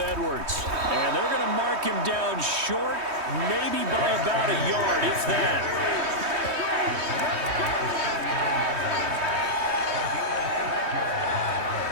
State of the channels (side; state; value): left; late; 3.2 ms